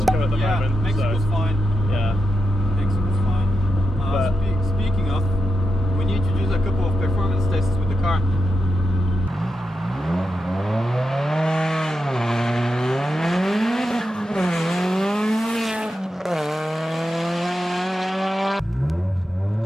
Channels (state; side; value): normal; both; correlation 0.88